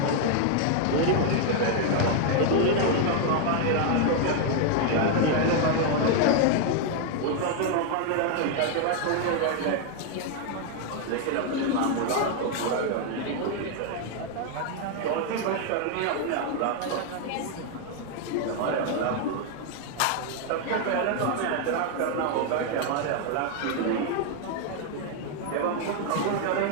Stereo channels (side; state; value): both; different; correlation 0.00